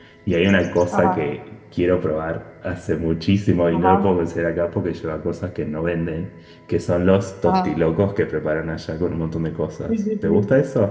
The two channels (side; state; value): both; identical; correlation 1.00